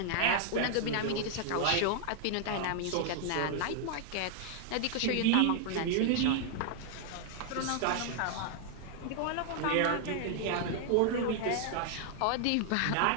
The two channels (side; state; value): both; different; correlation 0.00